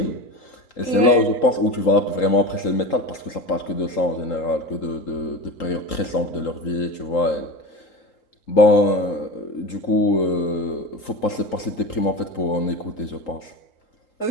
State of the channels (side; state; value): right; late; 3.8 ms